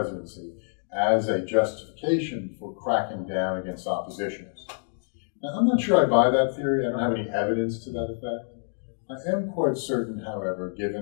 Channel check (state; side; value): silent; right; digital silence